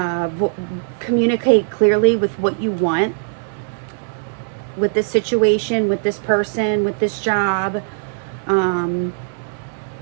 communicate clearly with what you want with this situation, with this person, with this job,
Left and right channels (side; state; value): left; silent; digital silence